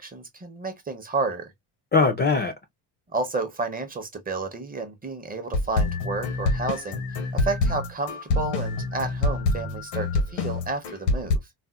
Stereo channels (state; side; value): normal; both; correlation 0.05